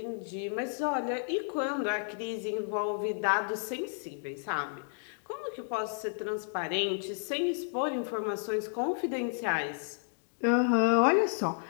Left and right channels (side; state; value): right; silent; digital silence